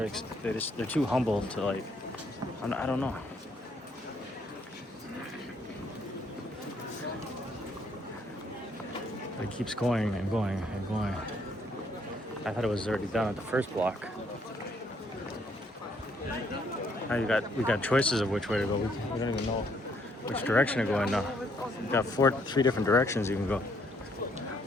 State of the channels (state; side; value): normal; both; correlation 0.69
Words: too humble to like. I don't know. But it keeps going and going and going. I thought it was already done at the first block. Now we got choices of which way to go. We don't even know which direction to go in now. We got three different directions you can go.